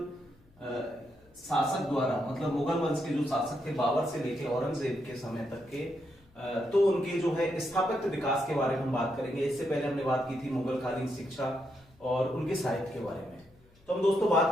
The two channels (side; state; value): left; noise; hum, 30 dB below the sound